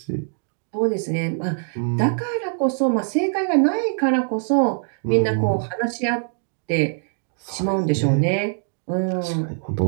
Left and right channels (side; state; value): left; silent; digital silence